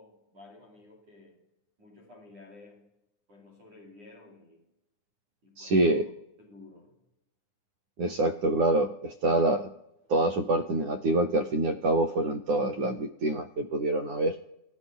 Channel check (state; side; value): late; left; 9.8 ms